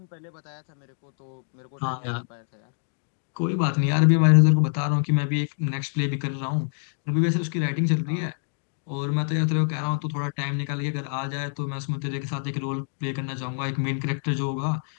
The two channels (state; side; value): silent; right; digital silence